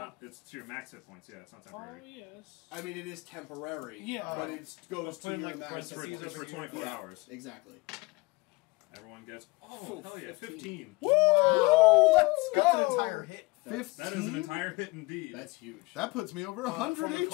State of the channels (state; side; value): quieter; right; 24.4 dB